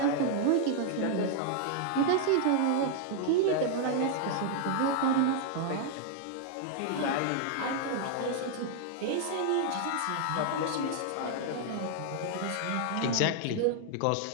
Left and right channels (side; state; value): both; different; correlation 0.00